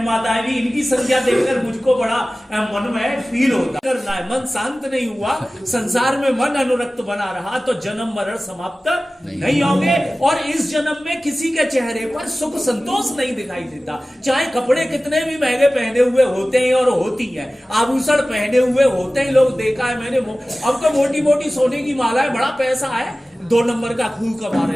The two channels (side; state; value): both; normal; correlation 0.97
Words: माताएं भी, इनकी संख्या देखकर मुझको बड़ा मन में फील होता है। मन शांत नहीं हुआ, संसार में मन अनुरक्त बना रहा तो जन्म मरण समाप्त नहीं होंगे। और इस जन्म में किसी के चेहरे पर सुख संतोष नहीं दिखाई देता, चाहे कपड़े कितने भी महंगे पहने हुए होते हैं और होती है, आभूषण पहने हुए होते हैं, लोग देखा है मैंने। अब तो मोटी मोटी सोने की माला है, बड़ा पैसा है, 2 नंबर का खून कमा